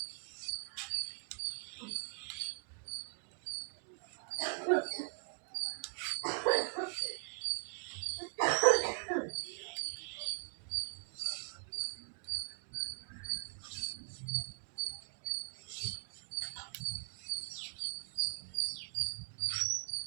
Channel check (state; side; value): quieter; left; 39.2 dB